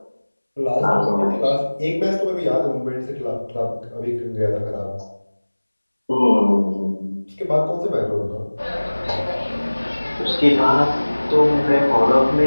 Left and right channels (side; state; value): both; inverted; correlation -1.00